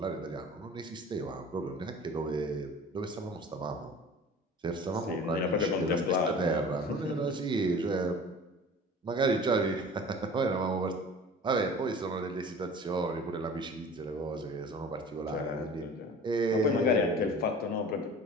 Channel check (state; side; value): normal; both; correlation 0.42